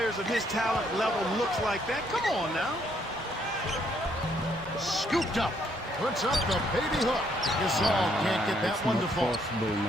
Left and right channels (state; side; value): normal; both; correlation 0.70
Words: of his talent level looks like that. Come on now. Scooped up. Puts up the baby hook. Gasol can't get that one to fall.